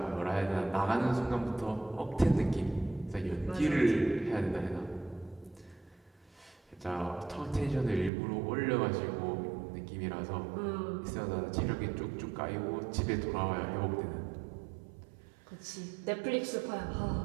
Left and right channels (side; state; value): left; drops out; at 8.1 s